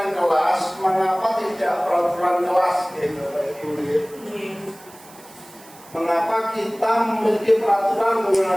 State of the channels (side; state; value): right; noise; hiss, 22 dB below the sound